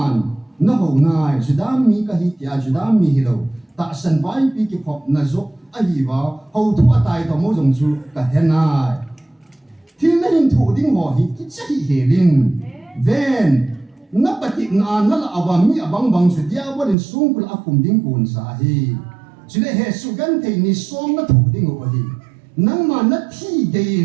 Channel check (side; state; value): left; drops out; at 16.9 s